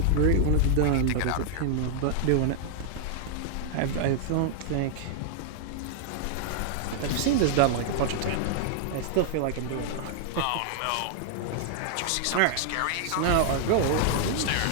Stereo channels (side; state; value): both; different; correlation 0.00